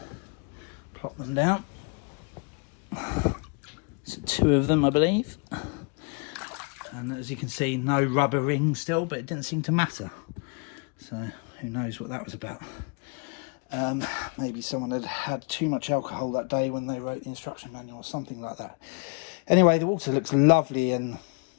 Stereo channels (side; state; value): right; quieter; 34.0 dB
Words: Plop them down. So 2 of them, I believe. And as you can see, no rubber ring still, but it didn't seem to matter. So who knows what that was about. Maybe someone had had too much alcohol that day when they wrote the instruction manual or something like that. Anyway, the water looks lovely and